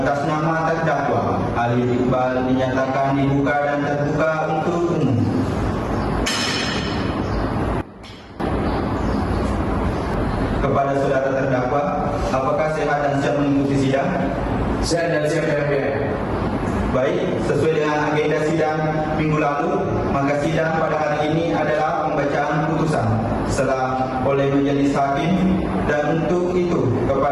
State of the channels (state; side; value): identical; both; correlation 1.00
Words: nama terdakwa Alif Iqbal dinyatakan dibuka dan terbuka untuk umum. Kepada saudara terdakwa, apakah sehat dan siap mengikuti sidang? Sehat dan siap yang mulia. Baik, sesuai dengan agenda sidang minggu lalu, maka sidang pada hari ini adalah pembacaan putusan setelah oleh majelis hakim, dan untuk itu